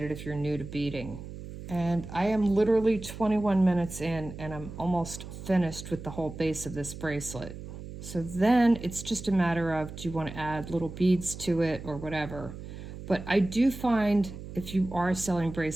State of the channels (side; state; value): right; noise; hum, 11 dB below the sound